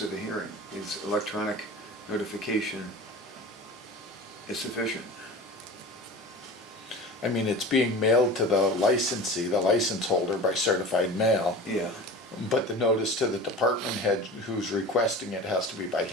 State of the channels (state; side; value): normal; both; correlation 0.35